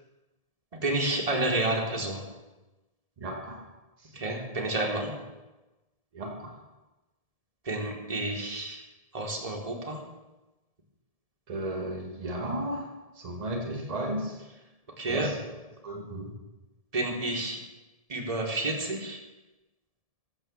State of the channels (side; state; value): left; late; 1.7 ms